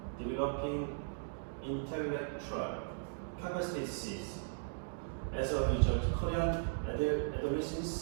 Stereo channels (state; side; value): silent; left; digital silence